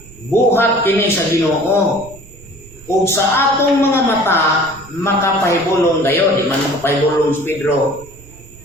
buhat kini sa Ginoo ug sa atong mga mata makapahibulong gayon di man makapahibulong si Pedro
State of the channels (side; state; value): right; noise; rumble, 23 dB below the sound